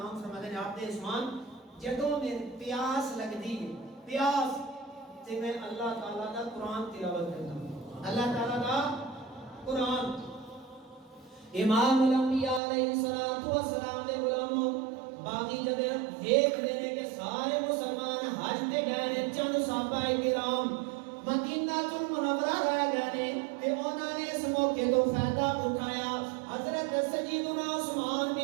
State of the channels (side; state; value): left; drops out; at 12.6 s